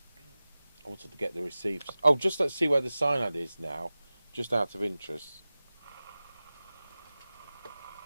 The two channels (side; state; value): both; inverted; correlation -0.96